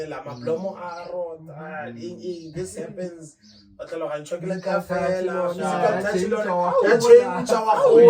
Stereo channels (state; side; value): identical; both; correlation 1.00